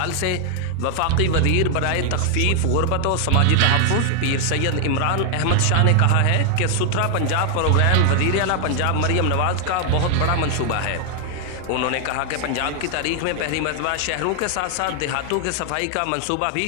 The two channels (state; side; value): different; both; correlation 0.00